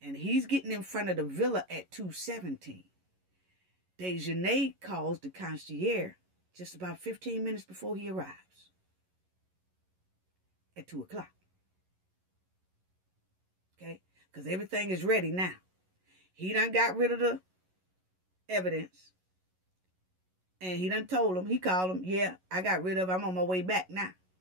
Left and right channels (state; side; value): late; left; 11 ms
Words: and he's getting in front of the villa at 2:17, Dejanay calls the concierge just about 15 minutes before he arrives at 2 o'clock. Okay? Because everything is ready now. He done got rid of the evidence. And he done told him, he called him, yeah, I got rid of it. I'm on my way back now.